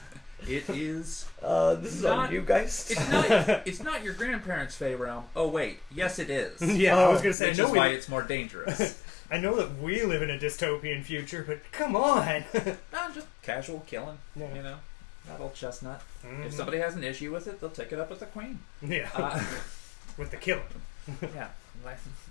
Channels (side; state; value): right; drops out; at 7.4 s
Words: It is... This is Not- on you guys. It's not your grandparents' Fey realm. Oh, wait. Yes, it is. Yeah, I was gonna say, Which I know is why it's more dangerous. I know that we live in a dystopian future, but come on. Just casual killing, Yeah. you know? Not old chestnut. If somebody has an issue with it, they'll take it up with the queen. Yeah. With the killing. Yeah. Like,